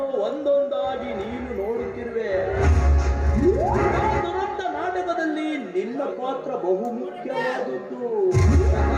ಒಂದೊಂದಾಗಿ ನೀನು ನೋಡುತ್ತಿರುವೆ. ಆ ದುರಂತ ನಾಟಕದಲ್ಲಿ ನಿನ್ನ ಪಾತ್ರ ಬಹುಮುಖ್ಯವಾದದ್ದು.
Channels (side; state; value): both; identical; correlation 1.00